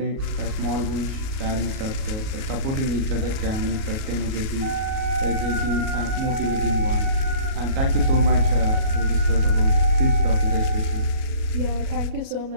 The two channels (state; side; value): late; left; 37 ms